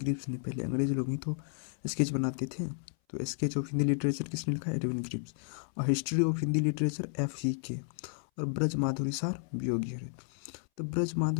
ने। पहले अंग्रेज लोग ही तो स्केच बनाते थे। तो स्केच ऑफ हिंदी लिटरेचर किसने लिखा? Edwin Greaves. और history of Hindi literature FCK। और ब्रज माधुरी सार वियोगी हरि। तो ब्रज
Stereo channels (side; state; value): right; silent; 56 dB below the other